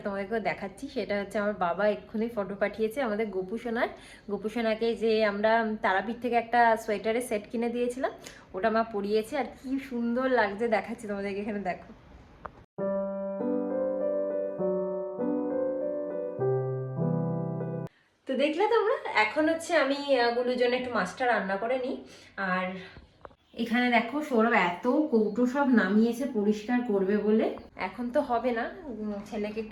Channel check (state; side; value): identical; both; correlation 1.00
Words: তোমাদেরকেও দেখাচ্ছি। সেটা হচ্ছে আমার বাবা এক্ষুনি ফটো পাঠিয়েছে আমাদের গোপুসোনার। গোপুসোনাকে যে আমরা তারাপীঠ থেকে একটা সোয়েটারের সেট কিনে দিয়েছিলাম, ওটা মা পরিয়েছে। আর কি সুন্দর লাগছে, দেখাচ্ছি তোমাদেরকে, এখানে দেখো। তো দেখলে তোমরা, এখন হচ্ছে আমি গুলোর জন্য একটু মাছটা রান্না করে নিই। আর এখানে দেখো সৌরভ এত কৌটো সব নামিয়েছে পরিষ্কার করবে বলে। এখন তো হবে না, ছেলেকে